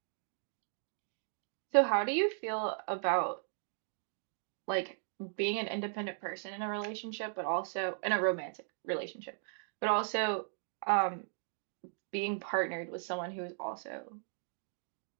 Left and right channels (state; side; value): silent; left; digital silence